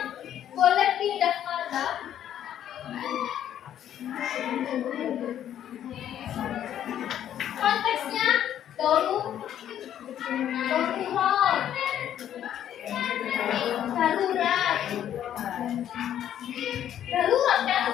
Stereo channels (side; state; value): right; quieter; 10.6 dB